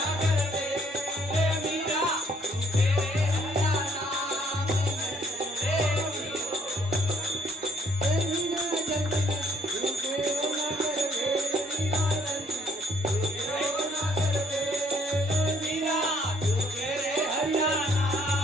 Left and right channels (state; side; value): normal; both; correlation 0.64